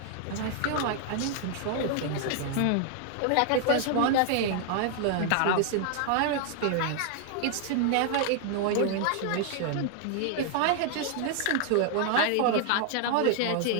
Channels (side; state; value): both; different; correlation 0.00